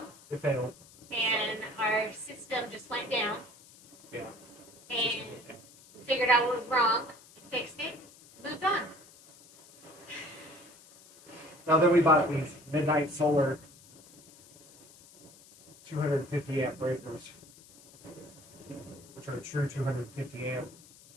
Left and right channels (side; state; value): left; noise; hiss, 23 dB below the sound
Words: It failed. And our system just went down. Yeah. And we figured out what was wrong, fixed it, moved on. Now then we bought these Midnight Solar 250 amp breakers, which are a true 250 amp